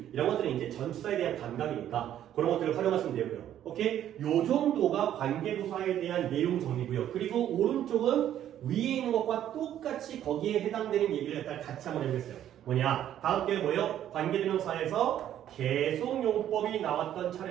이런 것들은 이제 전치사에 대한 감각이니까 그런 것들을 활용하시면 되고요. 오케이? 요 정도가 관계부사에 대한 내용 정리고요. 그리고 오른쪽은 위에 있는 것과 똑같이 거기에 해당되는 얘기를 같이 한번 해보겠어요. 뭐냐? 다음 게 뭐예요? 관계대명사에서 계속용법이 나왔던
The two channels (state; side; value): quieter; left; 11.1 dB